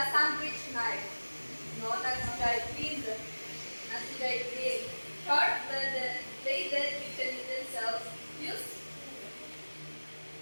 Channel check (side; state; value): both; inverted; correlation -1.00